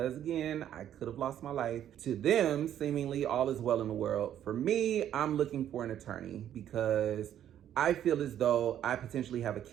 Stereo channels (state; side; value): quieter; left; 10.7 dB